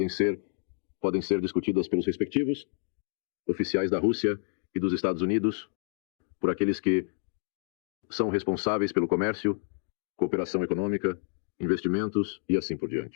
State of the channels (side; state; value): right; silent; 58 dB below the other